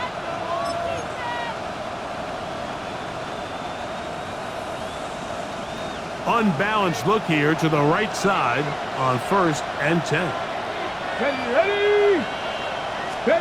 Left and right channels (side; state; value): both; identical; correlation 1.00